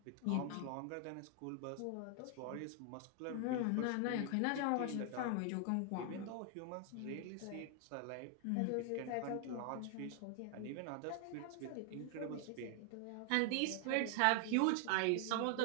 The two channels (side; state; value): both; different; correlation 0.00